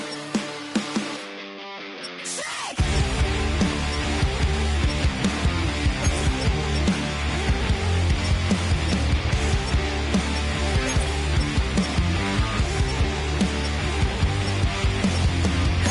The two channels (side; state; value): both; identical; correlation 1.00